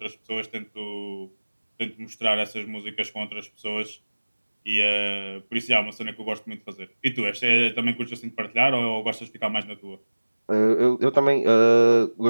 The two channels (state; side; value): inverted; both; correlation -1.00